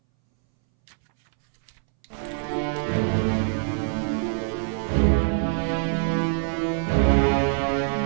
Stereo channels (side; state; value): left; silent; 62 dB below the other